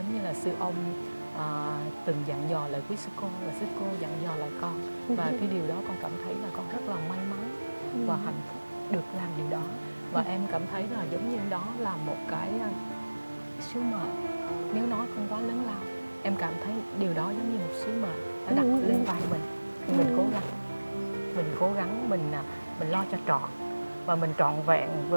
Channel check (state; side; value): inverted; both; correlation -1.00